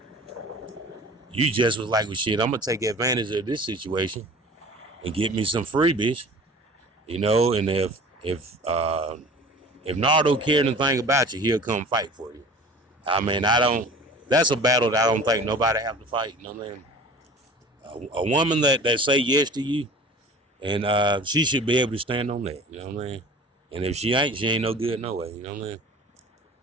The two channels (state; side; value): normal; both; correlation 0.43